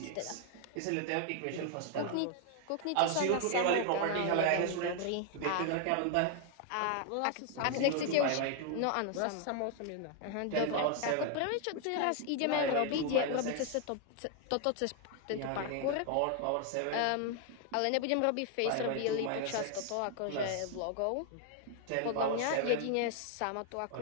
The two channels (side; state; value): both; different; correlation 0.00